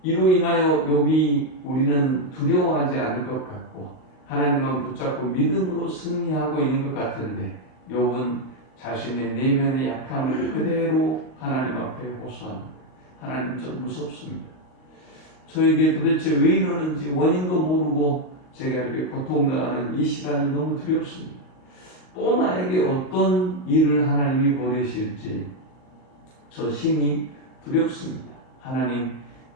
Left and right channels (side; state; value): right; late; 38 ms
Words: 이로 인하여 욥이 우리는 두려워하지 않을 것 같고 하나님만 붙잡고 믿음으로 승리하고 있는 것 같은데 욥은 자신의 내면의 약함을 그대로 하나님 앞에 호소합니다. 하나님, 좀 무섭습니다. 저에게 도대체 왜 이러는지 원인도 모르고 제가 이렇게 고통당하는 이 시간이 너무 두렵습니다. 또 나에게 어떤 일을 하나님이 보내실지 저 심히 두렵습니다. 하나님,